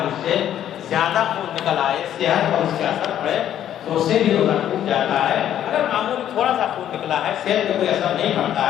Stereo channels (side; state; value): right; quieter; 10.9 dB